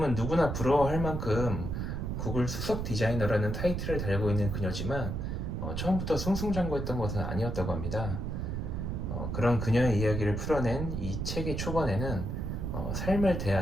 누구나 부러워할 만큼 구글 수석 디자이너라는 타이틀을 달고 있는 그녀지만 처음부터 승승장구했던 것은 아니었다고 합니다. 그런 그녀의 이야기를 풀어낸 이 책의 초반에는 삶을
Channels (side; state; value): right; noise; rumble, 3 dB below the sound